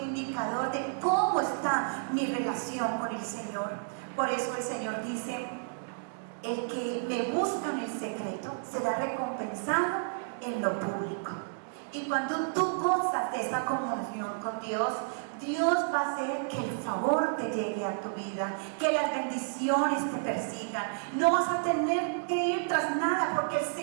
de cómo está mi relación con el Señor. Por eso el Señor dice, el que me busca en el secreto será recompensado en lo público. Y cuando tú gozas de esa comunión con Dios, Dios va a hacer que el favor te llegue a tu vida, que las bendiciones te persigan. No vas a tener que ir tras nada, porque el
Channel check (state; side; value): silent; left; digital silence